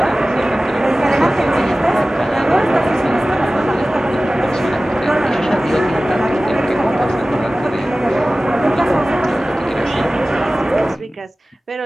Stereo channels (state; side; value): normal; both; correlation 0.97